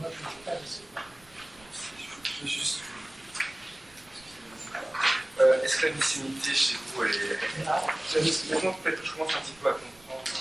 je ne vais pas laisser. Je vais juste. Est-ce que la mycénité chez vous, elle est. Maintenant, peut-être que je commence un petit peu à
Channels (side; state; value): right; noise; rumble, 27 dB below the sound